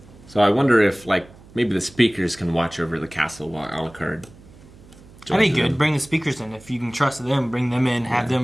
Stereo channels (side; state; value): right; noise; hum, 23 dB below the sound